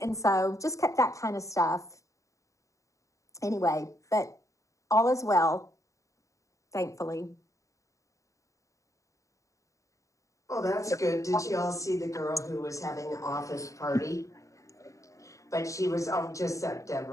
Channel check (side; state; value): right; late; 0.16 ms